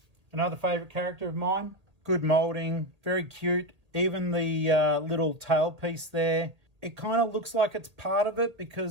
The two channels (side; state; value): left; late; 1.8 ms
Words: another favourite character of mine. Good moulding, very cute. Even the little tail piece there. It kind of looks like it's part of it,